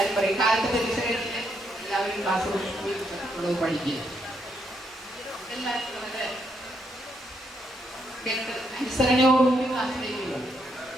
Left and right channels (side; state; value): both; normal; correlation 0.76